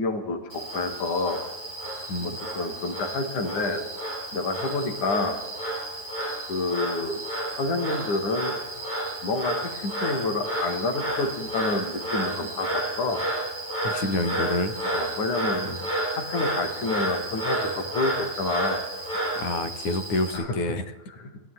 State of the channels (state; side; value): late; right; 9.2 ms